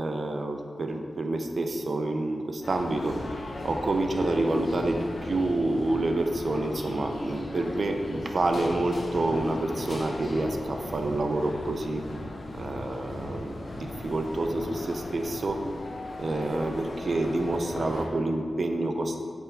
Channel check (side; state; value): both; normal; correlation 0.93